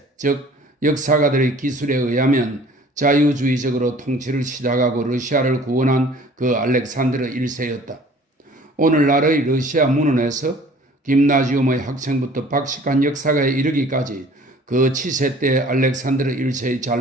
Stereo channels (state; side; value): normal; both; correlation 0.50